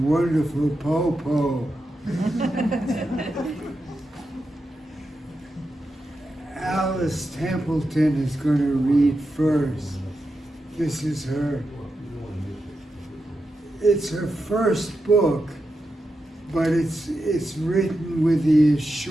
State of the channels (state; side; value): normal; both; correlation 0.88